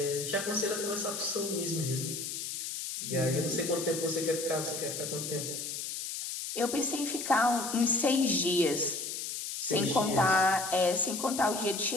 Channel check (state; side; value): noise; left; hiss, 5 dB below the sound